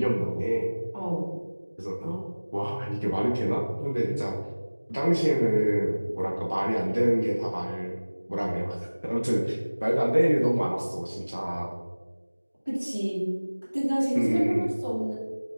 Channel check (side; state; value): both; inverted; correlation -1.00